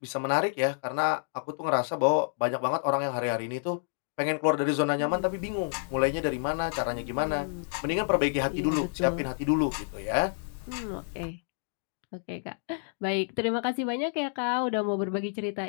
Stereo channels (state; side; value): silent; right; digital silence